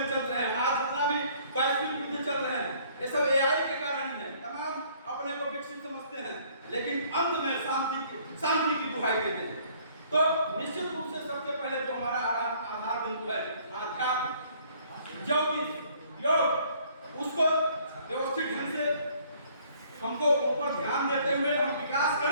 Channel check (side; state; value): both; inverted; correlation -0.60